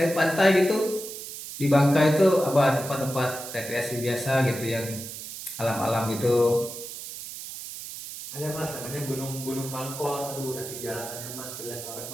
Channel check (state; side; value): noise; right; hiss, 10 dB below the sound